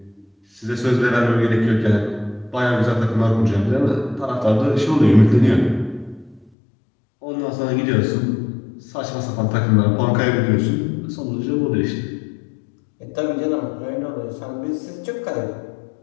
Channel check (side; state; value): right; drops out; at 6.5 s